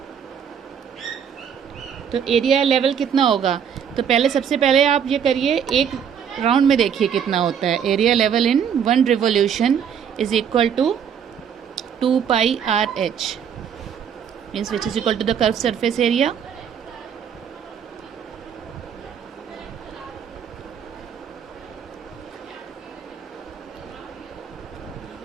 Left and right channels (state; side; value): quieter; left; 7.9 dB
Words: तो एरिया लेवल कितना होगा, तो पहले सबसे पहले आप ये करिए, एक राउंड में देखिए कितना होता है। Area level in 1 revolution is equal to 2πRh, means which is equal to the curve surface area.